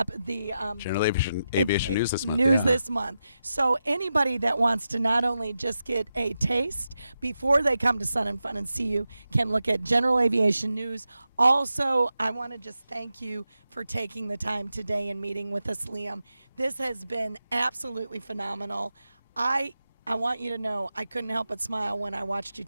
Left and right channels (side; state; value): both; inverted; correlation -0.89